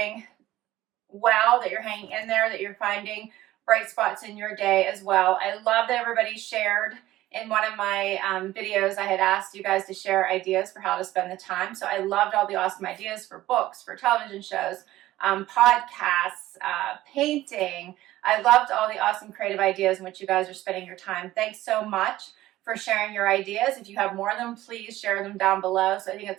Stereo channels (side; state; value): left; quieter; 15.7 dB